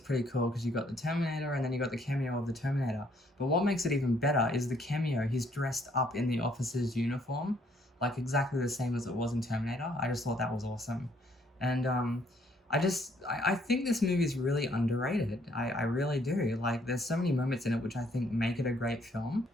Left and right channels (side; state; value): both; normal; correlation 0.66